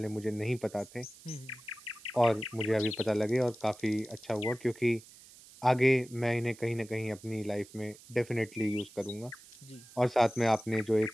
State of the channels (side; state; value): right; noise; hiss, 21 dB below the sound